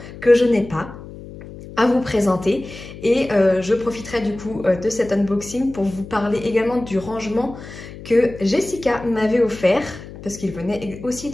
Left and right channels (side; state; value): left; noise; hum, 14 dB below the sound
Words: que je n'ai pas à vous présenter et je profiterai du coup de cet unboxing pour vous parler également du rangement que Jessica m'avait offert parce qu'il venait aussi